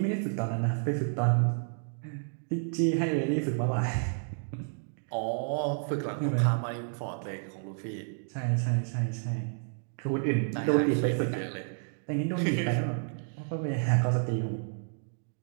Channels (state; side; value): silent; left; digital silence